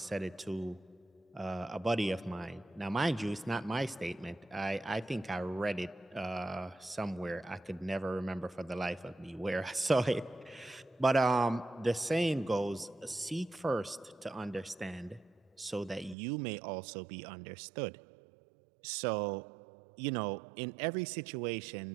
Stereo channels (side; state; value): left; drops out; at 16.2 s